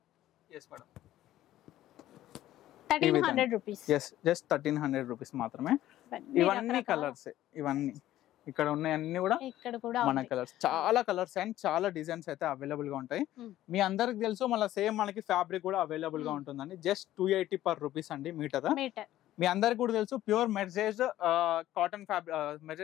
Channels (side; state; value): right; quieter; 13.8 dB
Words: yes madam, ₹1300. yes, just ₹1300 మాత్రమే. ఇవన్నీ కలర్స్, ఇవన్నీ ఇక్కడ ఉన్నాయి అన్ని కూడా ఇక్కడ కూడా మన కలర్స్, చాలా కలర్స్ అండ్ చాలా డిజైన్స్ అయితే అవైలబుల్ గా ఉంటాయి. మీ అందరికి తెలుసు, మళ్ళీ సేమ్ మనకి ఫ్యాబ్రిక్ కూడా అవైలబుల్ గా ఉంటుందండి. జస్ట్ ₹280 per అండి మీటర్. మీ అందరికి కూడా తెలుసు ప్యూర్ మెర్జేజ్